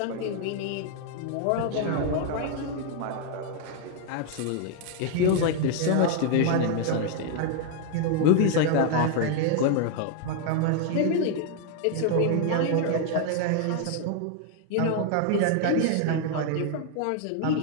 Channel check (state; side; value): different; both; correlation 0.00